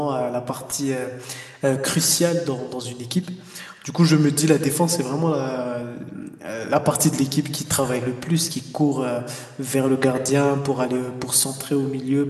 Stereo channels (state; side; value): identical; both; correlation 1.00